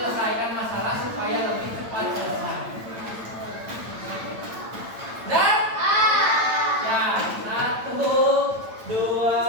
masalah supaya lebih cepat selesai. Dan ya, 1,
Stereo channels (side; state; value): left; late; 8.9 ms